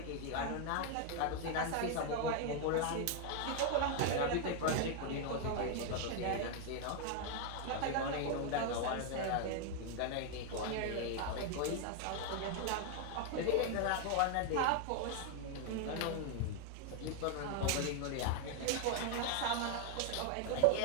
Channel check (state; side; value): different; both; correlation 0.00